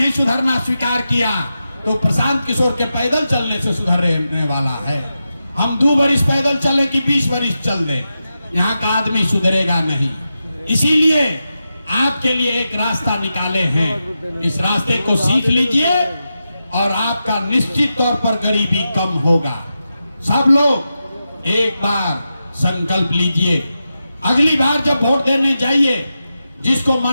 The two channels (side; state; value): both; inverted; correlation -0.89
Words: सुधरना स्वीकार किया तो प्रशांत किशोर के पैदल चलने से सुधरने वाला है। हम 2 बरिस पैदल चले कि 20 बरिस चल दे, यहाँ का आदमी सुधरेगा नहीं। इसीलिए आपके लिए एक रास्ता निकाले हैं, इस रास्ते को सीख लीजिए और आपका निश्चित तौर पर गरीबी कम होगा। सब लोग एक बार संकल्प लीजिए, अगली बार जब वोट देने जाइए जिसको